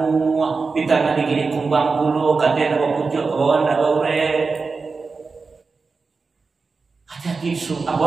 ditana digini kumbang bulu katena pucuk kawan da baure. Hati-hati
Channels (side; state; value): left; quieter; 4.4 dB